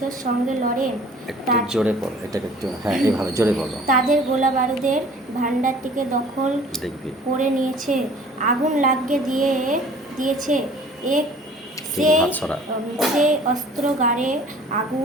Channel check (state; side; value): normal; both; correlation 0.50